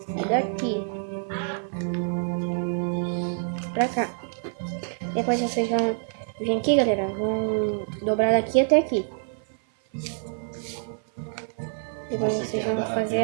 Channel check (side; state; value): left; silent; 56 dB below the other